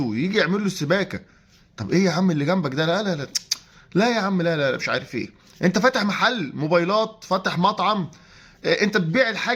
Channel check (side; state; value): both; identical; correlation 1.00